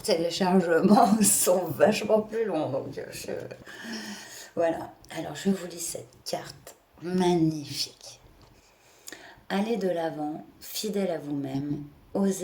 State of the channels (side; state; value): both; identical; correlation 1.00